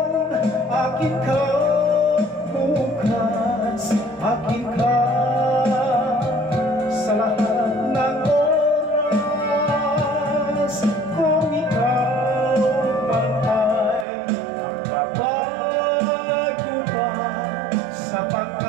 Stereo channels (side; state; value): left; drops out; at 14.1 s